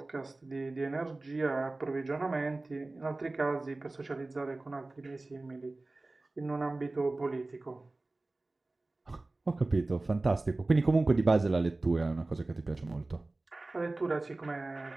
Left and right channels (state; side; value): quieter; left; 3.1 dB